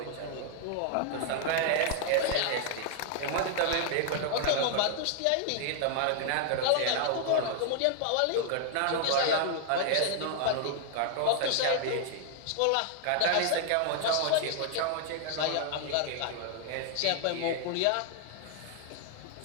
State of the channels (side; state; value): both; different; correlation 0.00